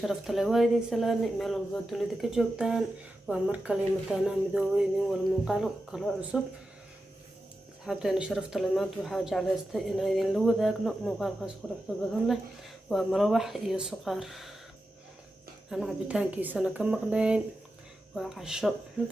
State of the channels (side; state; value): both; normal; correlation 0.91